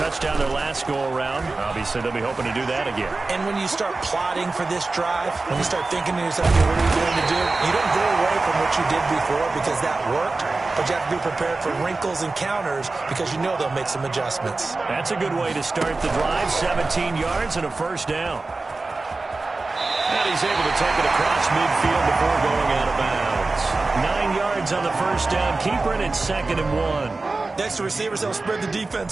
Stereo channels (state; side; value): quieter; left; 3.5 dB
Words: their last go-around. Obviously, they'll be hoping to do that again. And when you start plotting for this drive, when you start thinking to yourself, hey, what are you going to do? You don't go away from what you did before because that worked. But you have to be prepared for wrinkles and counters because you know they'll make some adjustments. That's a good way to start the drive. 17 yards and a first down. And he's able to take it across midfield before going out of bounds. 9 yards on the first down. Keeper, and it's 2nd and 1. Next, the receivers helped spread the